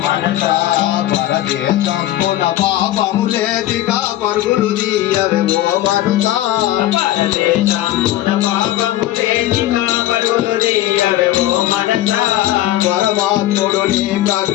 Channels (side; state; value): right; quieter; 14.4 dB